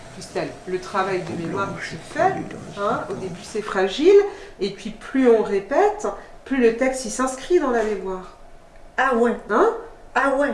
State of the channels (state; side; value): identical; both; correlation 1.00